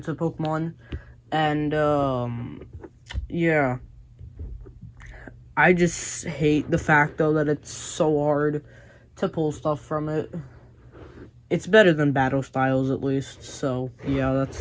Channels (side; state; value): both; identical; correlation 1.00